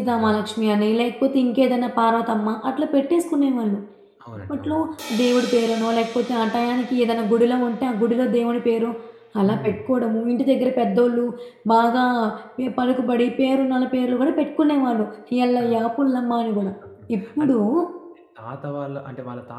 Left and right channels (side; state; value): both; identical; correlation 1.00